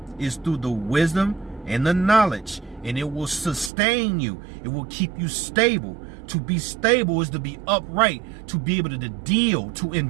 is through the wisdom and the knowledge, and it will sustain you. It will keep you stable. To be stable is to be upright, to be able to deal, to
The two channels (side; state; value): left; drops out; at 3.7 s